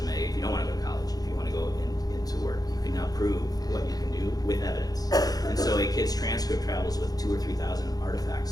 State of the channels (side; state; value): right; late; 0.18 ms